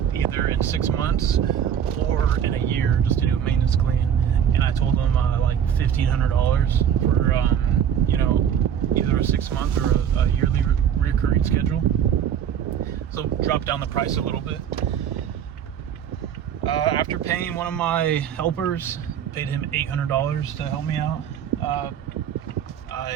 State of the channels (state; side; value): quieter; left; 8.8 dB